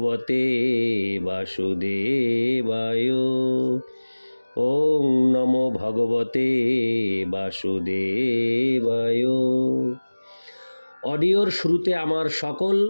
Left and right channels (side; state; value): both; inverted; correlation -1.00